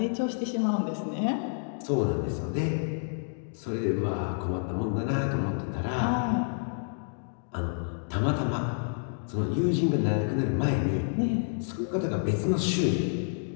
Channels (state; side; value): silent; right; digital silence